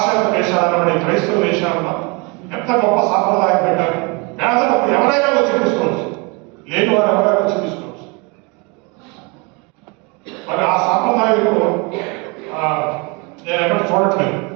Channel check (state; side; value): quieter; left; 29.8 dB